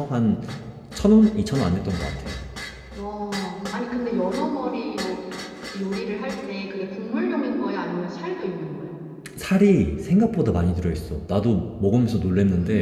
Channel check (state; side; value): identical; both; correlation 1.00